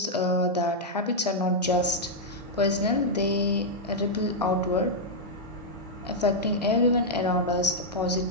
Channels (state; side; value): normal; both; correlation -0.04